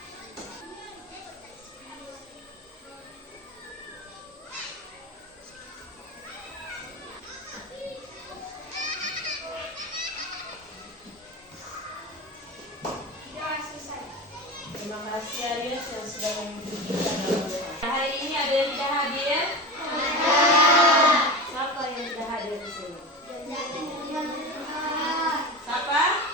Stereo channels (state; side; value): normal; both; correlation 0.27